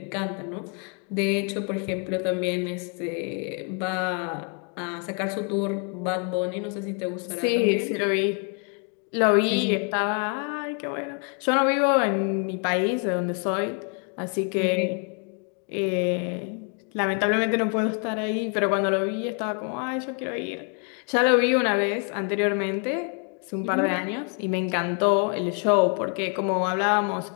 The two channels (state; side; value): quieter; right; 39.7 dB